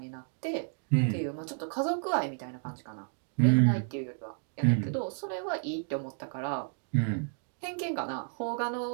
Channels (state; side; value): silent; left; 57 dB below the other